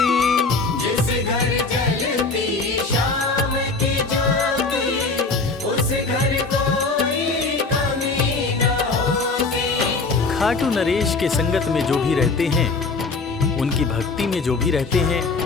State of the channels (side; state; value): right; quieter; 3.9 dB